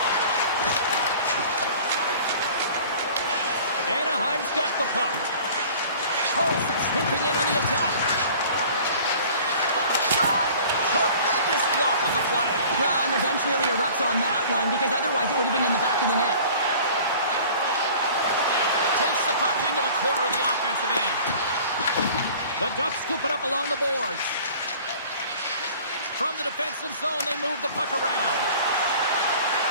Anaheim's got the puck. Carlson sweeping in on the attack. Shot! Tremendous block on the play. Well, and the bench really erupts on that one because otherwise it would have been in the back of the net. Takes the puck into the corner of the offensive end. The Ducks scoop it up along the boards. From the defensive zone, they move the puck around.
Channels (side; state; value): both; inverted; correlation -0.46